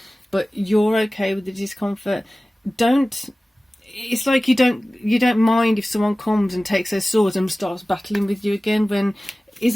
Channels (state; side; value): normal; both; correlation 0.97